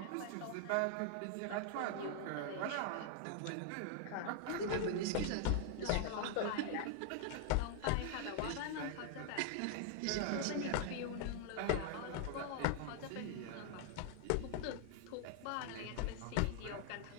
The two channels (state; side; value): different; both; correlation 0.00